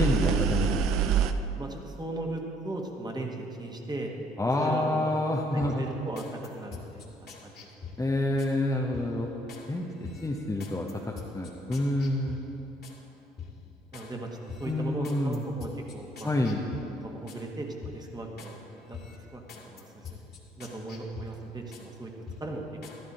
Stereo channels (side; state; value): both; normal; correlation 0.67